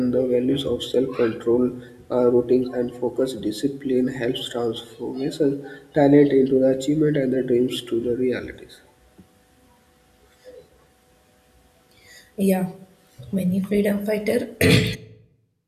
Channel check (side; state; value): both; identical; correlation 1.00